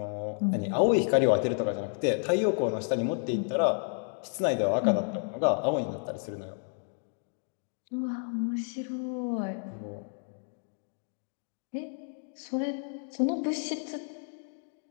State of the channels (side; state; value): right; silent; 56 dB below the other